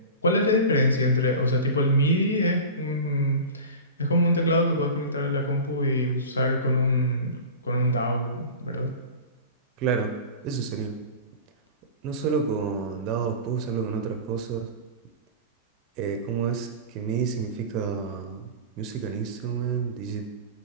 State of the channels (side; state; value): both; inverted; correlation -0.33